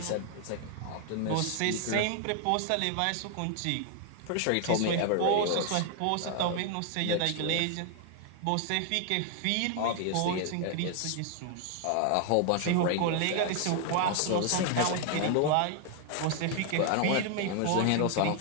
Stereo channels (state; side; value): different; both; correlation 0.00